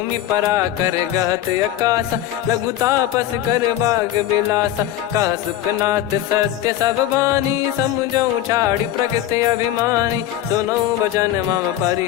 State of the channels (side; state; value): right; quieter; 12.6 dB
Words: परा कर गहत आकाशा, लघु तापस कर बाग बिलासा। कह सुखनाथ सत्य सब बानी, समुझौ छाड़ी प्रकृति अभिमानी। सुनो भजन मम